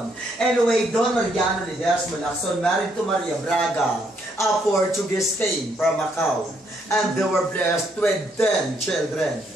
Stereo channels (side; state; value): both; normal; correlation 0.72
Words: Anyway, Don Mariano Ledesma Lacson married to Maria Braga, a Portuguese came from Macau. And they were blessed with 10 children.